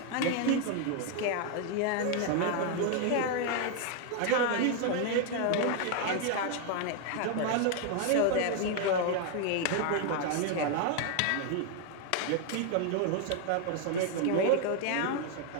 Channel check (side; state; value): both; different; correlation 0.01